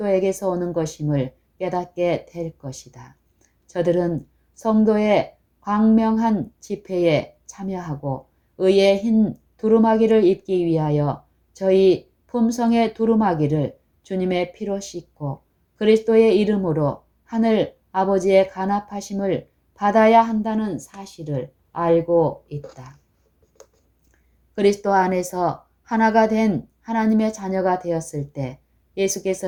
오는 것임을 깨닫게 될 것이다. 저들은 성도의 광명한 집회에 참여하고 의의 흰 두루마기를 입기 위하여 저희 품성의 두루마기를 주님의 피로 씻고 그리스도의 이름으로 하늘 아버지의 간합하심을 받아야 한다는 사실을 알고 있다. 그리스도 안에서 하나가 된 하나님의 자녀가 되었을 때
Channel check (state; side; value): identical; both; correlation 1.00